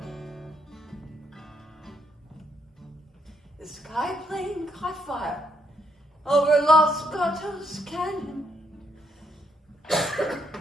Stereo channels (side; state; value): both; normal; correlation 0.75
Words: The sky plane caught fire over Los Gatos Canyon. A